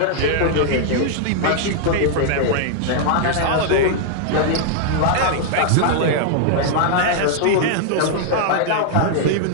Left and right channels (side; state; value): both; different; correlation -0.01